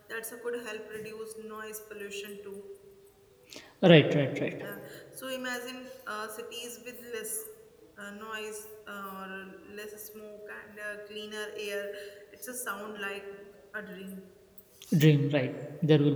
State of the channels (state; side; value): identical; both; correlation 1.00